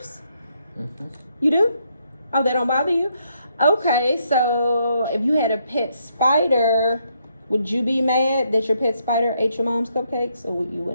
You do? Oh, they don't bother you? Okay, so if you had a pet spider, would you be mad that your pet spider ate your mom's cupcakes, or you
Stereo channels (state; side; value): inverted; both; correlation -0.75